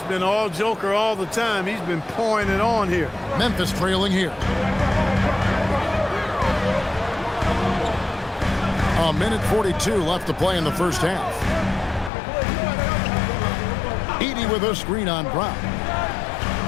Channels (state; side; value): drops out; right; at 12.1 s